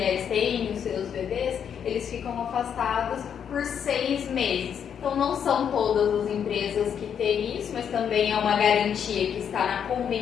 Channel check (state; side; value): quieter; right; 8.1 dB